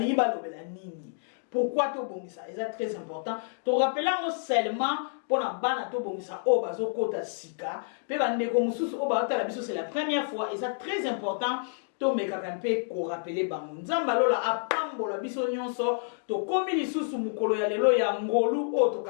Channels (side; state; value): right; silent; digital silence